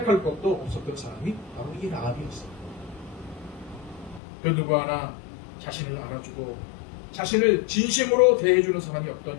것도 없었던 사람이 바로 이 라합이었어요. 그 누구 하나 자신을 알아주고 자신을 진심으로 대해주는 사람이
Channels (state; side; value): drops out; right; at 4.2 s